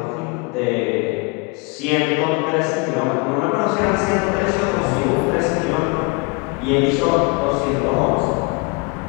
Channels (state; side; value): quieter; right; 30.4 dB